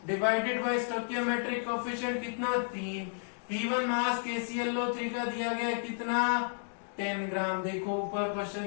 डिवाइडेड बाय स्टोइकोमेट्रिक कोफिशिएंट कितना? 3 गिवन मास KClO3 का दिया गया कितना 10 ग्राम। देखो ऊपर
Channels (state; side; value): silent; right; digital silence